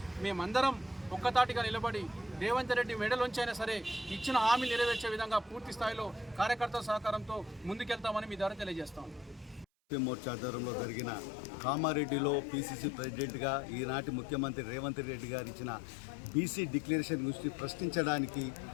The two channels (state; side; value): drops out; right; at 9.7 s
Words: మేమందరం ఒక్కతాటిగా నిలబడి రేవంత్ రెడ్డి మెడలోంచి అయినా సరే ఇచ్చిన హామీ నెరవేర్చే విధంగా పూర్తి స్థాయిలో కార్యకర్తల సహకారంతో ముందుకెళ్తామని మీ ద్వారా తెలియజేస్తాం. మోర్చా ఆధ్వర్యంలో జరిగిన కామారెడ్డిలో పీసీసీ ప్రెసిడెంట్గా ఈనాటి ముఖ్యమంత్రి రేవంత్ రెడ్డి గారు ఇచ్చిన బీసీ డిక్లరేషన్ గురించి ప్రశ్నించడానికి,